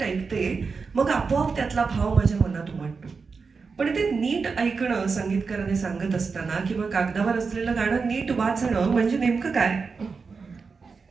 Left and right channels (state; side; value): quieter; left; 4.9 dB